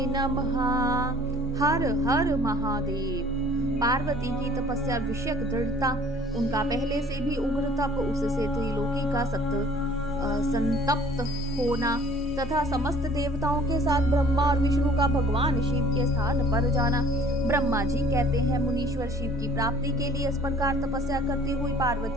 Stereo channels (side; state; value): both; normal; correlation 0.52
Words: नमः। हर हर महादेव। पार्वती की तपस्या विषयक दृढ़ता, उनका पहले से भी उग्र तप, उससे त्रिलोकी का संतप्त होना तथा समस्त देवताओं के साथ ब्रह्मा और विष्णु का भगवान शिव के स्थान पर जाना। ब्रह्मा जी कहते हैं, मुनीश्वर शिव की प्राप्ति के लिए इस प्रकार तपस्या करती हुई